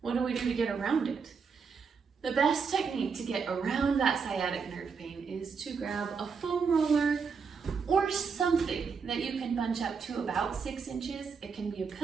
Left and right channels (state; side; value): quieter; left; 5.7 dB